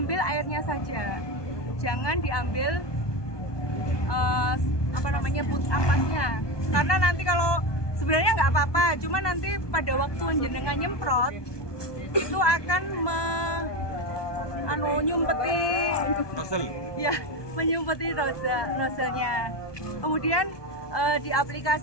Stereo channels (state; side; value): late; right; 1.2 ms